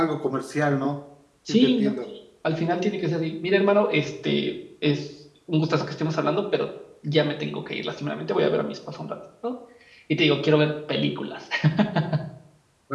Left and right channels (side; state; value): both; identical; correlation 1.00